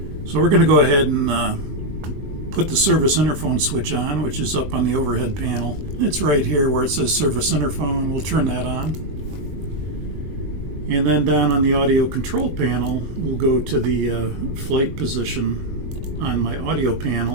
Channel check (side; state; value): left; late; 20 ms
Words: So we're going to go ahead and put the service interphone switch on, which is up on the overhead panel. It's right here where it says service interphone. We'll turn that on. And then down on the audio control panel, we'll go to the flight position on my audio